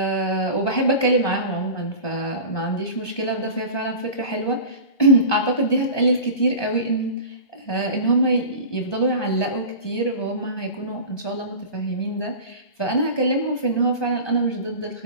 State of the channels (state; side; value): late; right; 1.2 ms